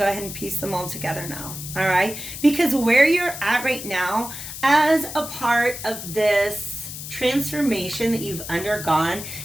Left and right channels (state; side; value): noise; left; hiss, 9 dB below the sound